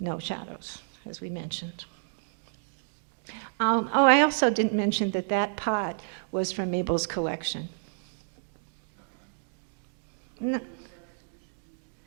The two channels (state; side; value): silent; left; digital silence